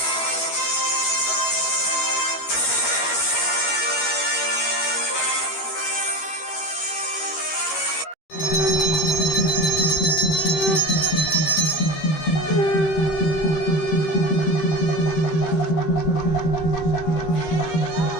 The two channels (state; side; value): late; right; 12 ms